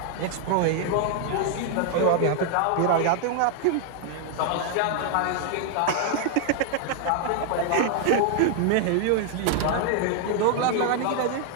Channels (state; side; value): different; both; correlation 0.00